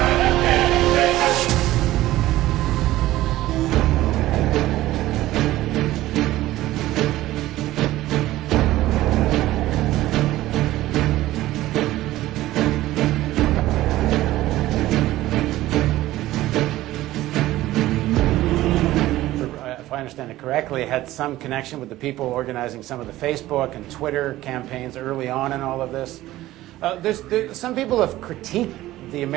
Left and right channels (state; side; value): quieter; left; 15.9 dB